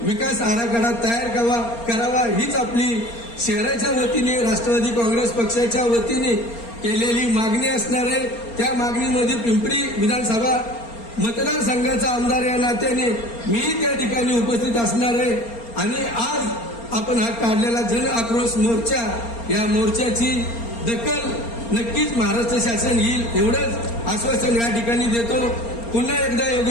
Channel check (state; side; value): late; right; 4.3 ms